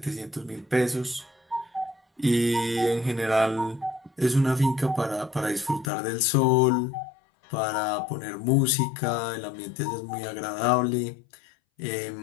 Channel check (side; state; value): right; drops out; at 5.9 s